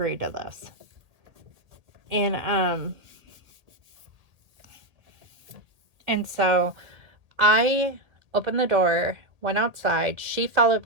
to this. And so I opened the door, went outside. She followed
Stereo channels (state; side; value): late; left; 1.8 ms